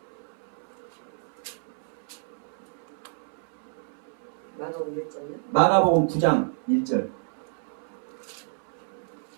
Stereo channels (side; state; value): left; silent; 58 dB below the other